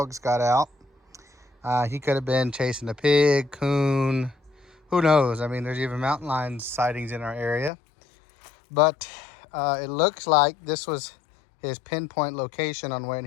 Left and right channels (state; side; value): drops out; right; at 7.7 s